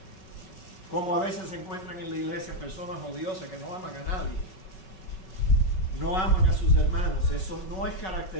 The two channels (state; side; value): late; right; 5.3 ms